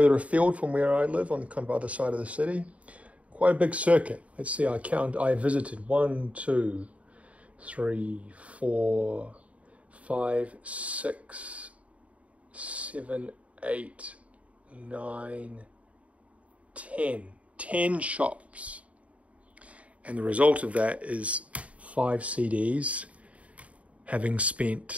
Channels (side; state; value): left; late; 0.066 ms